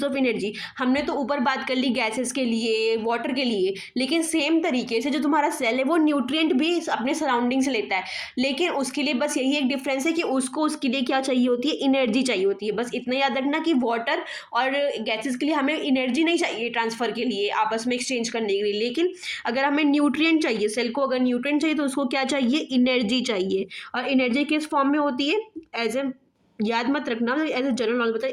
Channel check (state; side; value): identical; both; correlation 1.00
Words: of energy. हमने तो ऊपर बात कर ली गैसेस के लिए, वाटर के लिए, लेकिन सेम तरीके से जो तुम्हारा सेल है वो न्यूट्रिएंट भी अपने सराउंडिंग से लेता है, लेकिन उसके लिए बस यही एक डिफरेंस है कि उसको उसके लिए क्या चाहिए होती है, एनर्जी चाहिए होती है। बस इतना याद रखना कि वाटर और गैसेस के लिए हमें एनर्जी नहीं चाहिए ट्रांसफ़र के लिए, आपस में एक्सचेंज करने के लिए, लेकिन अगर हमें न्यूट्रिएंट चाहिए, सेल को अगर न्यूट्रिएंट चाहिए तो उसको क्या चाहिए, एनर्जी चाहिए। और एनर्जी किस फॉर्म में होती है, एज ए, याद मत रखना, एज ए जनरल नॉलेज बताए,